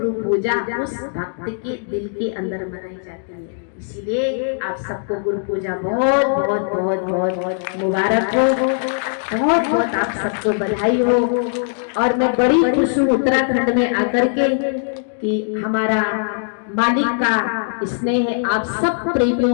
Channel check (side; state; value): right; silent; digital silence